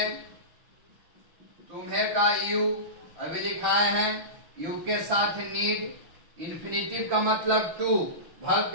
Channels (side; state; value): left; late; 6.0 ms